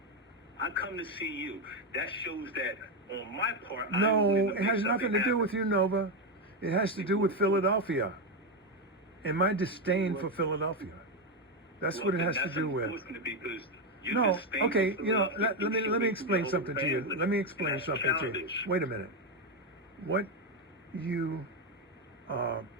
I come to see you. That shows that on my part, I'm No, willing to it make has something nothing to do happen. with you, Nova. It has to do with Philadelphia and my disdain for Philadelphia. That's Well, what it then has to that's do with. unfortunate because you No, disdain okay, for you know, Philadelphia. let You me make explain your something to you. family. Let me explain That's something to you. childish. Wait a minute. What you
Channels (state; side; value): normal; both; correlation 0.07